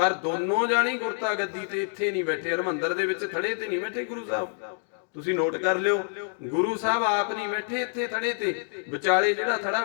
ਦੋਨੋਂ ਜਾਣੀ ਗੁਰਤਾ ਗੱਦੀ ਤੇ ਇੱਥੇ ਨਹੀਂ ਬੈਠੇ, ਹਰਮੰਦਰ ਦੇ ਵਿੱਚ ਥੜੇ ਤੇ ਨਹੀਂ ਬੈਠੇ ਗੁਰੂ ਸਾਹਿਬ, ਤੁਸੀਂ ਨੋਟ ਕਰ ਲਿਓ। ਗੁਰੂ ਸਾਹਿਬ ਆਪ ਨਹੀਂ ਬੈਠੇ ਇੱਥੇ ਥੜੇ ਤੇ, ਵਿਚਾਲੇ ਜਿਹੜਾ ਥੜਾ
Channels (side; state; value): right; silent; 60 dB below the other